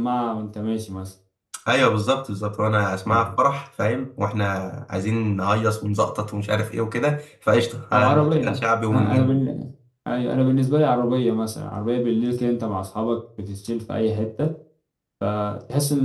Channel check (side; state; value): both; identical; correlation 1.00